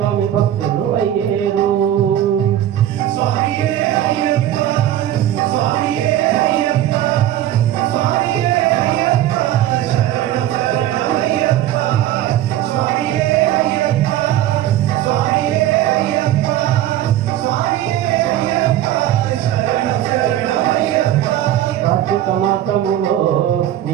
భక్తులు అయ్యేరు. కార్తీక మాసములో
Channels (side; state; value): left; quieter; 12.5 dB